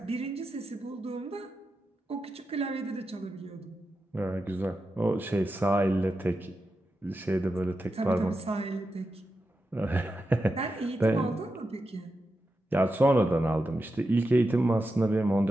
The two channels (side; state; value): both; normal; correlation 0.89